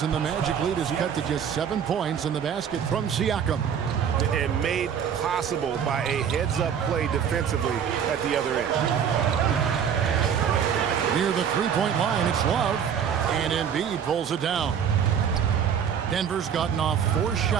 and the Magic lead is cut to just 7 points in the basket from Siakam. And made possible by a heads-up play defensively at the other end. Near the three-point line, it's Love. And Embiid pulls it down. Denver's gotten off 4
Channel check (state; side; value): quieter; left; 8.0 dB